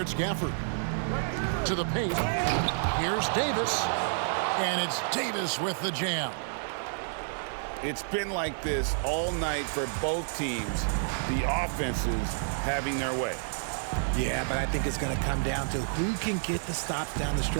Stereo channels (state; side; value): silent; left; 58 dB below the other